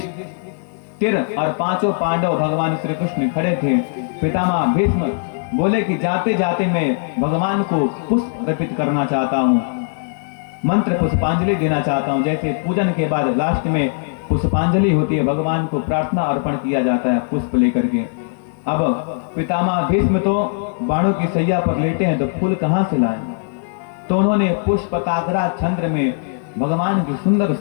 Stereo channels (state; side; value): silent; right; digital silence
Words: और पांचों पांडव भगवान श्री कृष्ण खड़े थे। पितामह भीष्म बोले कि जाते जाते मैं भगवान को पुष्प अर्पित करना चाहता हूँ, मंत्र पुष्पांजलि देना चाहता हूँ। जैसे पूजन के बाद लास्ट में पुष्पांजलि होती है, भगवान को प्रार्थना अर्पण किया जाता है पुष्प लेकर के। अब पितामह भीष्म तो बाणों की सैया पर लेटे हैं, तो फूल कहां से लाए? तो उन्होंने पुष्पकाग्रा छंद में भगवान की सुंदर